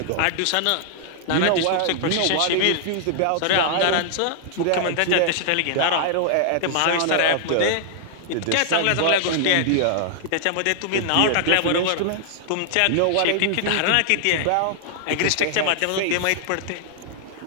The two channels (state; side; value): different; both; correlation -0.01